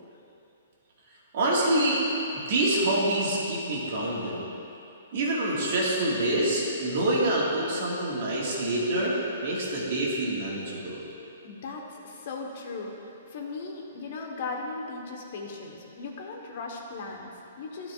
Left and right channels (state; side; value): inverted; both; correlation -0.51